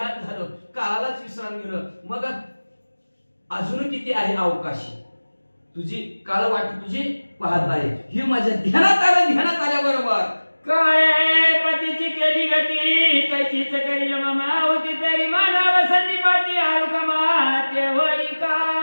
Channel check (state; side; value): inverted; both; correlation -1.00